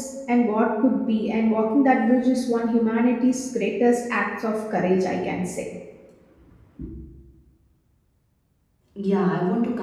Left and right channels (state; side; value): identical; both; correlation 1.00